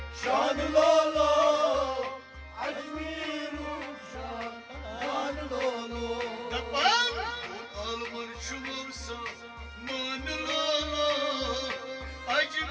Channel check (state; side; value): identical; both; correlation 1.00